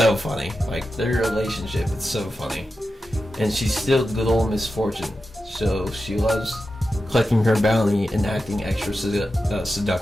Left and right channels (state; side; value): normal; both; correlation 0.91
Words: funny. Like, their relationship, it's so funny. And she's still good old Misfortune. so she loves collecting her bounty and acting extra